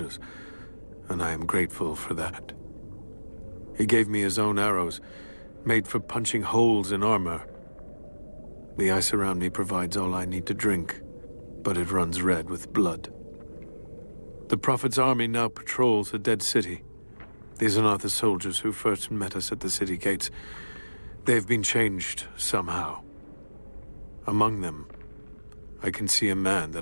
and I am grateful for that. He gave me his own arrows, made for punching holes in armor. The ice around me provides all I need to drink, but it runs red with blood. The Prophet's army now patrols the dead city. These are not the soldiers who first met us at the city gates. They've been changed somehow. Among them, I can see a man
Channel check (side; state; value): both; inverted; correlation -1.00